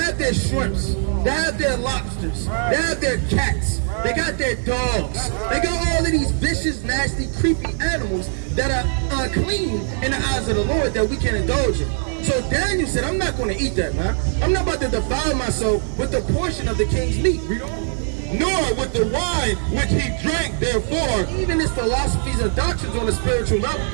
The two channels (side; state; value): left; silent; digital silence